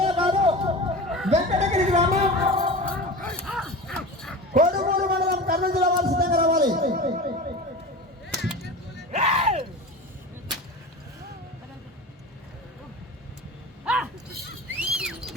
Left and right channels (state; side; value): normal; both; correlation 0.31